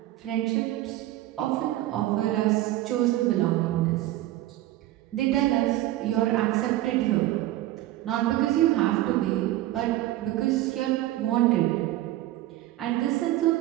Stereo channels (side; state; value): left; quieter; 15.6 dB